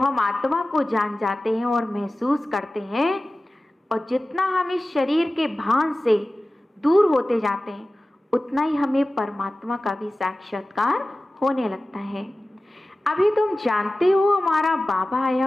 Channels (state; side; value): normal; both; correlation 0.96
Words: आत्मा को जान जाते हैं और महसूस करते हैं, और जितना हम इस शरीर के भान से दूर होते जाते हैं, उतना ही हमें परमात्मा का भी साक्षात्कार होने लगता है। अभी तुम जानते हो हमारा बाबा आया